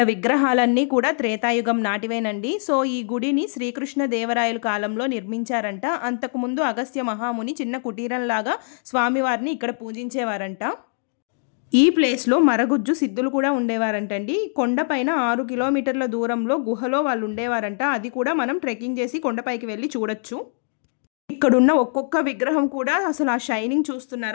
విగ్రహాలన్నీ కూడా త్రేతాయుగం నాటివేనండి. సో ఈ గుడిని శ్రీకృష్ణ దేవరాయల కాలంలో నిర్మించారంట. అంతకుముందు అగస్త్య మహాముని చిన్న కుటీరంలాగా స్వామివారిని ఇక్కడ పూజించేవారంట. ఈ ప్లేస్లో మరగుజ్జు సిద్ధులు కూడా ఉండేవారంటండి. కొండపైన 6 కిలోమీటర్ల దూరంలో గుహలో వాళ్ళు ఉండేవారంట. అది కూడా మనం ట్రెక్కింగ్ చేసి కొండపైకి వెళ్ళి చూడొచ్చు. ఇక్కడున్న ఒక్కొక్క విగ్రహం కూడా అసలు ఆ షైనింగ్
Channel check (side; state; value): right; silent; 64 dB below the other